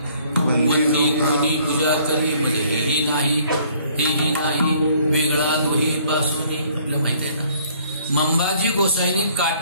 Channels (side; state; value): both; inverted; correlation -0.60